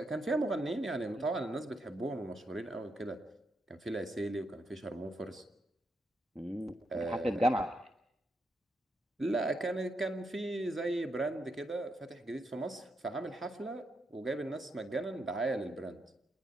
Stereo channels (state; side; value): normal; both; correlation 0.81